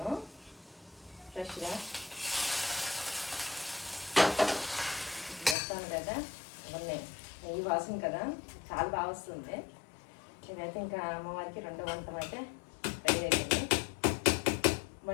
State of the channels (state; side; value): drops out; right; at 5.6 s